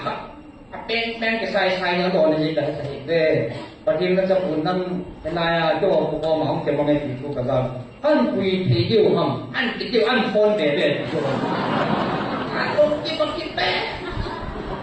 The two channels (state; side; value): identical; both; correlation 1.00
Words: ka pen ke sai na do ne ji ka sai de patim na cha pun nan na ya jo ko ma ong ke ma ngai ti ko ka ga an kui thi diu ham an ti diu an phone de de an ko ki pe